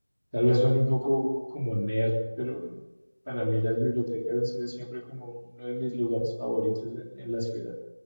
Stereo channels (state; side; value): inverted; both; correlation -1.00